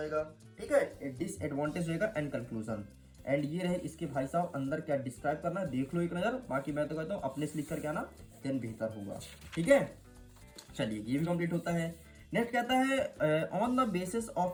ठीक है, डिसएडवांटेज रहेगा एंड कंक्लूजन। एंड ये रहे इसके भाई साहब अंदर क्या डिस्क्राइब करना है, देख लो एक नजर। बाकी मैं तो कहता हूँ अपने से लिख करके आना देन बेहतर होगा। ठीक है, चलिए ये भी कंप्लीट होता है। नेक्स्ट कहता है on the basis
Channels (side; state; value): both; identical; correlation 1.00